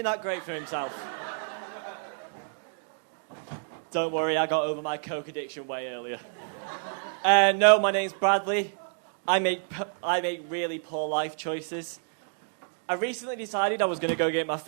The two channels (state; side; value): silent; left; digital silence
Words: that great for himself. Don't worry, I got over my coke addiction way earlier. No, my name's Bradley. I make really poor life choices. I recently decided I was going to go get my